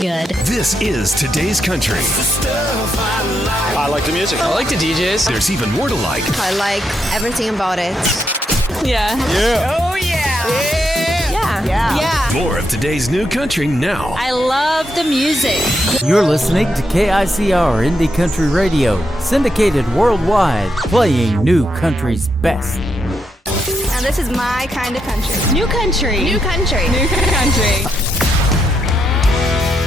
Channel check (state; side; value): normal; both; correlation 0.81